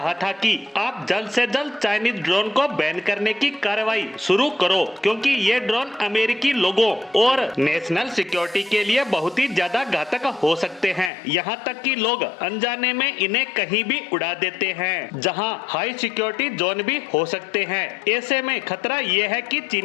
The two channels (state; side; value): drops out; right; at 11.1 s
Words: था कि आप जल्द से जल्द चाइनीज ड्रोन को बैन करने की कार्रवाई शुरू करो, क्योंकि ये ड्रोन अमेरिकी लोगों और नेशनल सिक्योरिटी के लिए बहुत ही ज्यादा घातक हो सकते हैं। यहाँ तक कि लोग अनजाने में इन्हें कहीं भी उड़ा देते हैं, जहाँ हाई सिक्योरिटी जोन भी हो सकते हैं। ऐसे में खतरा ये है कि